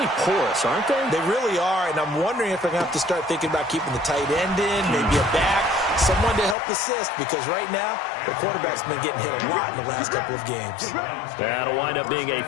porous, aren't they? They really are, and I'm wondering if they're going to have to start thinking about keeping the tight end in, maybe a back, someone to help assist, because right now, the quarterback's been getting hit a lot in the last couple of games. That'll wind up being a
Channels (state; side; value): drops out; right; at 6.6 s